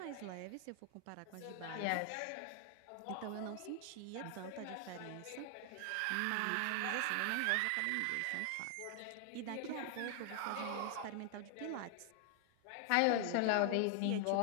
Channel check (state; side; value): different; both; correlation 0.00